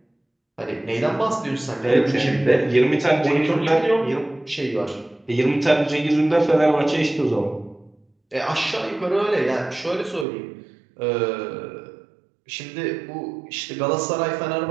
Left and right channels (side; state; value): left; drops out; at 10.2 s